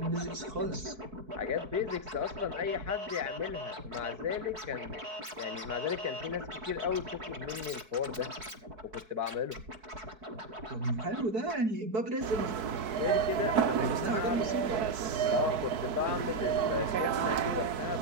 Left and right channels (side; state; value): left; late; 4.6 ms